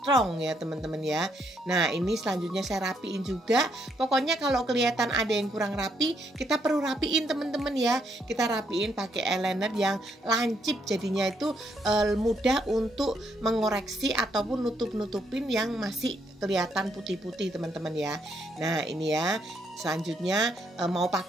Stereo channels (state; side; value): normal; both; correlation 0.74